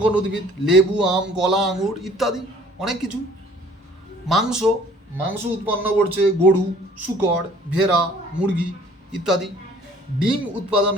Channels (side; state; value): both; normal; correlation 0.54